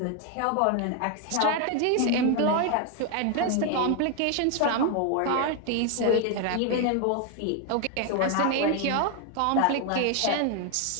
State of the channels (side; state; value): both; different; correlation 0.01